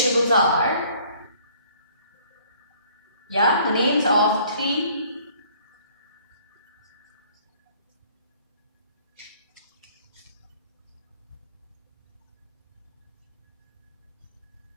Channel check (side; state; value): both; inverted; correlation -0.58